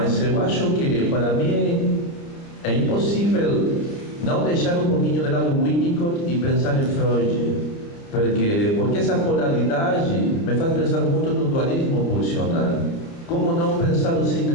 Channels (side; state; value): right; late; 30 ms